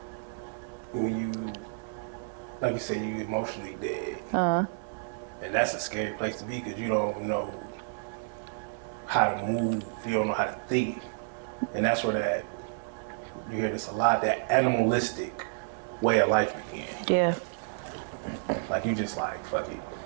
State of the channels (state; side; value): silent; left; digital silence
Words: when you, like you said, you emotionally dead, and that's a scary place to be because you don't know how to move, you don't know how to think, and that's where you hear this a lot, that animalistic way of life began. Yeah. Like you just like, fuck it.